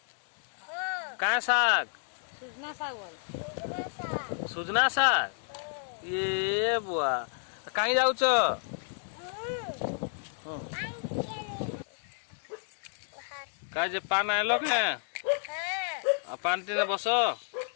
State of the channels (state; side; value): silent; right; digital silence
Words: काय साग सुजना साग बोल सुजना साग ये बुआ कहीं जाऊ का जे पान आलो के पान टीने बसो